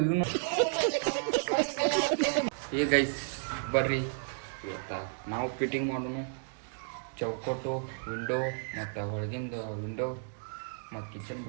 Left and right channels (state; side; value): silent; left; digital silence